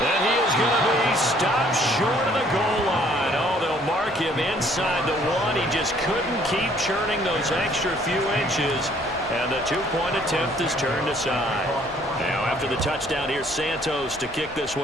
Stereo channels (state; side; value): normal; both; correlation 0.61